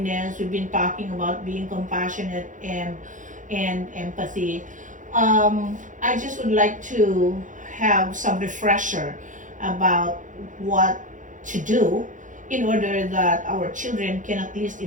we've been talking about being compassionate and empathy. I just would like to have some refresher about what to do in order that our children can at least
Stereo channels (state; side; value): late; left; 0.37 ms